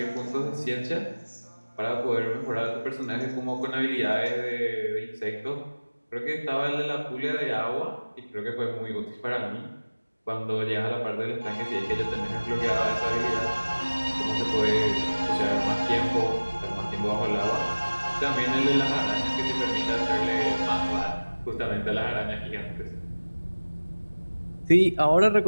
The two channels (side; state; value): both; inverted; correlation -1.00